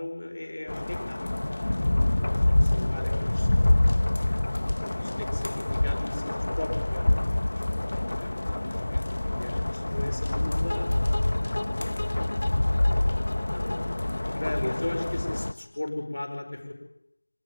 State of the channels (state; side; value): inverted; both; correlation -1.00